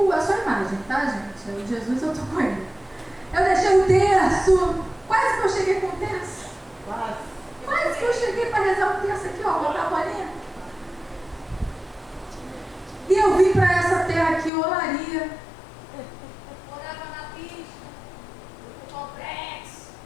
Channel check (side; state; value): right; drops out; at 14.5 s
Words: só imagem, tá, gente? O Jesus eu tô com ele. Eu deixei o terço. Quase que eu cheguei com o terço. Quase que eu cheguei para rezar o terço aqui, ó, botar a bolinha. E eu vim para essa terra aqui, Olaria. Morava na pista, no complexo.